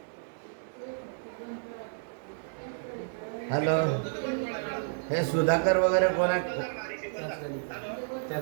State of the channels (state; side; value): silent; left; digital silence